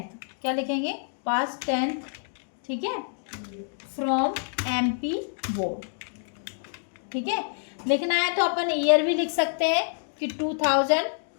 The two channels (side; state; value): right; silent; digital silence